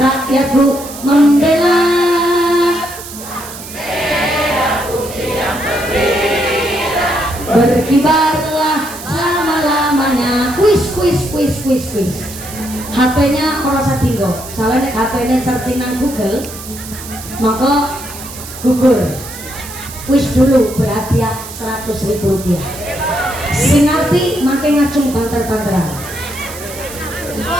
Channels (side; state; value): right; noise; hiss, 13 dB below the sound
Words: membela. Berkibarlah selama-lamanya. Kuis. HP-nya ora usah tinggo. Soalnya HP-nya searching nang Google, maka gugur. Kuis dulu berhadiah Rp100.000. Sing ngerti makin ngacung banter-banteran.